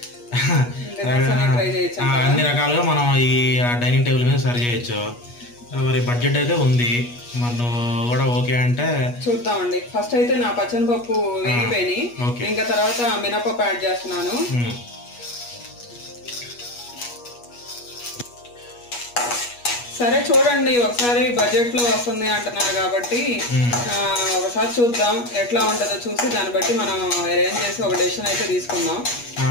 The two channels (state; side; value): late; right; 8.3 ms